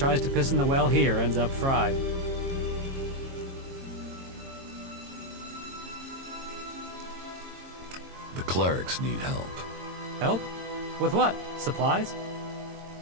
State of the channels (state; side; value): late; left; 22 ms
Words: to piss in the well here ends up fried. The clerics need help. Help? With what? Supplies?